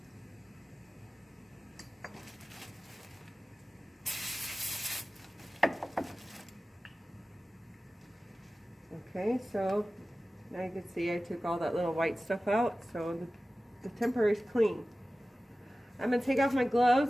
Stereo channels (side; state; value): both; normal; correlation 0.96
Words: Okay, so now you can see I took all that little white stuff out, so the temporary is clean. I'm going to take off my